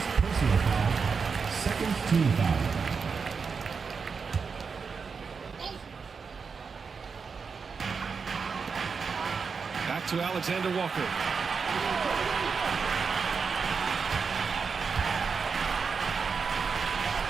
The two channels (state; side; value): quieter; left; 5.4 dB